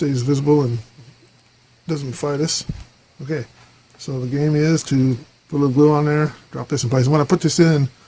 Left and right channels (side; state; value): both; identical; correlation 1.00